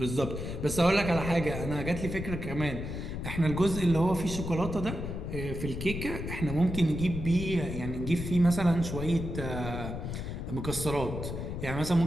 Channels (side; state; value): left; noise; rumble, 5 dB below the sound